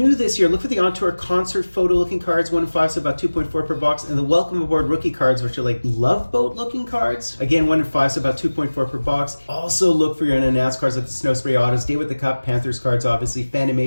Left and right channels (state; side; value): inverted; both; correlation -1.00